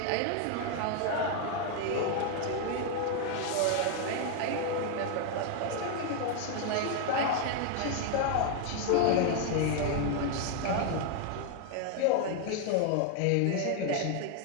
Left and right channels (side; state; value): both; different; correlation 0.00